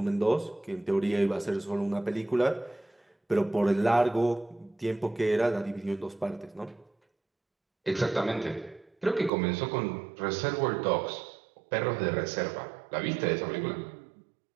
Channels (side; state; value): left; drops out; at 9.3 s